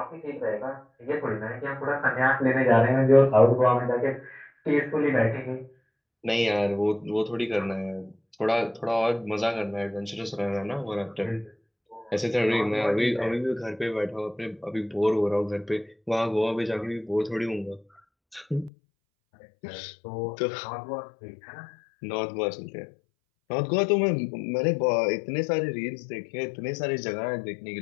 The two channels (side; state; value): right; drops out; at 18.7 s